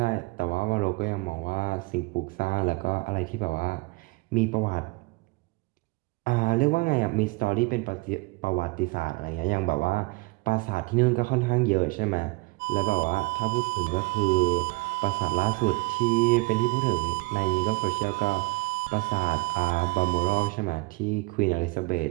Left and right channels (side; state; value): left; quieter; 24.7 dB